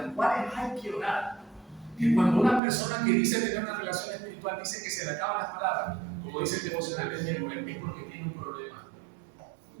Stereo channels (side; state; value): left; drops out; at 2.6 s